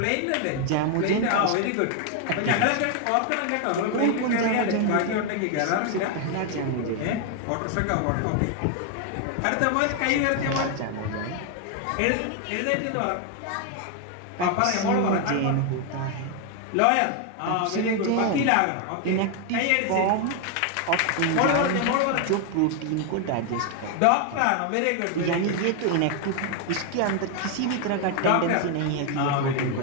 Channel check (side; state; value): both; different; correlation 0.01